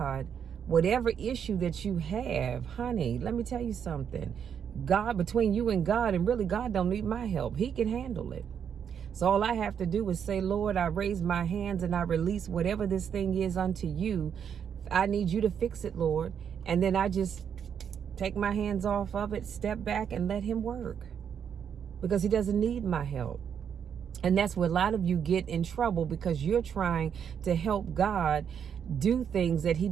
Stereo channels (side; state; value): left; quieter; 7.9 dB